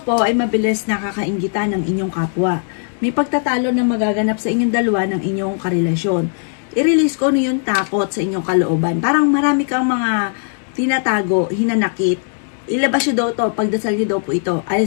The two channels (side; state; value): right; silent; digital silence